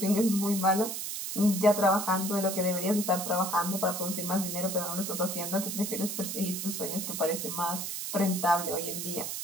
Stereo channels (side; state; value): right; noise; hiss, 4 dB below the sound